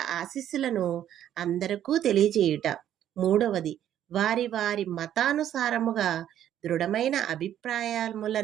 ఆశీస్సులను అందరికీ తెలియజేయుట, 3వది వారి వారి మతానుసారముగా దృఢమైన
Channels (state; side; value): quieter; left; 10.9 dB